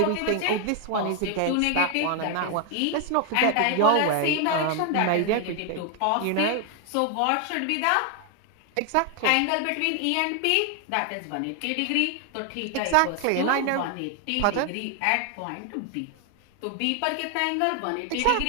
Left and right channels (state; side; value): different; both; correlation 0.01